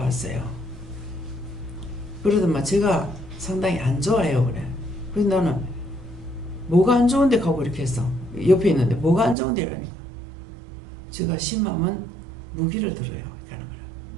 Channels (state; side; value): drops out; left; at 9.3 s